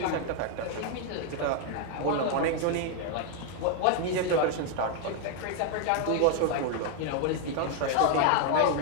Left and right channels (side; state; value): both; different; correlation 0.00